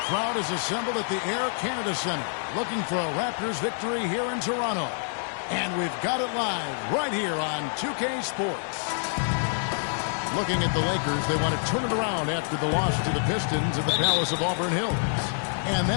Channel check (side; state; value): right; silent; 60 dB below the other